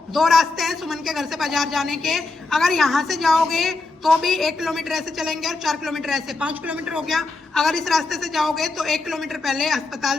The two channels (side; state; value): right; quieter; 3.5 dB